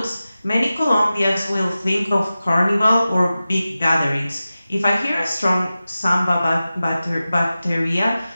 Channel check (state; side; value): inverted; both; correlation -0.95